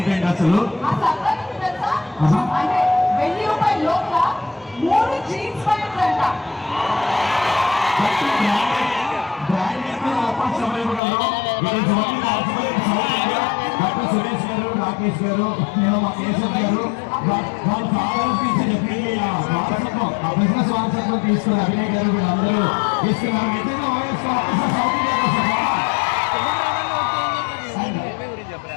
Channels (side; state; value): right; drops out; at 11.0 s